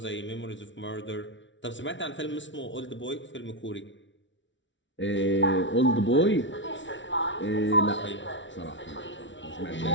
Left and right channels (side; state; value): right; late; 0.55 ms